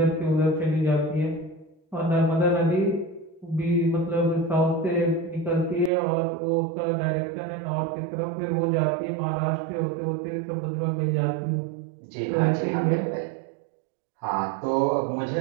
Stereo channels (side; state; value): left; drops out; at 5.9 s